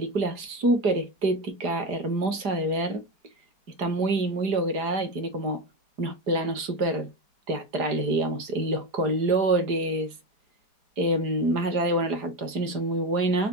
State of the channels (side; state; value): left; late; 4.9 ms